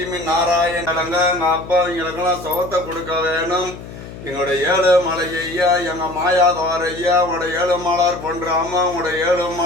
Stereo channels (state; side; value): noise; left; hum, 13 dB below the sound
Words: நாராயணங்க எங்க அப்பா எங்களுக்கெல்லாம் சுகத்தை கொடுக்க வேணும் எங்களோட ஏழு மலை ஐயா எங்க மாயாதவார் ஐயா உங்களோட ஏழு மாலார் பண்றாம உங்களோட ஏழு